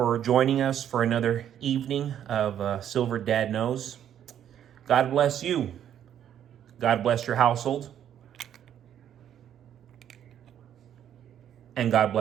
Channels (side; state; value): left; quieter; 10.0 dB